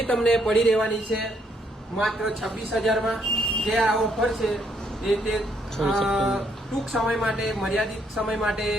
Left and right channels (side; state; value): both; normal; correlation 0.72